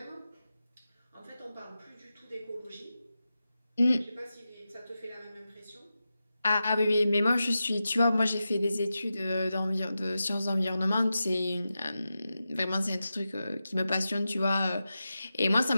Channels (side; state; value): both; inverted; correlation -0.92